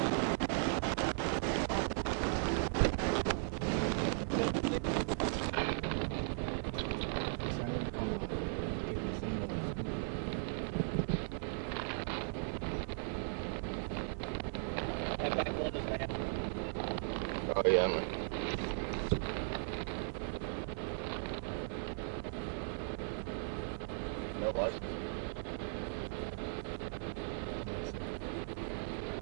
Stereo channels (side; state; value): left; silent; 53 dB below the other